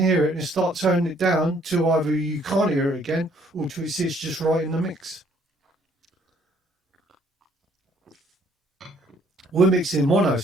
hear it and start turning it down till either you can't hear it again or till it sits just right in the mix. We're mixing mono,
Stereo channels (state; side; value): normal; both; correlation 0.64